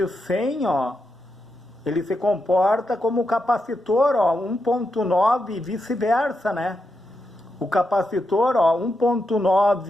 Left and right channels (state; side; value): normal; both; correlation 0.85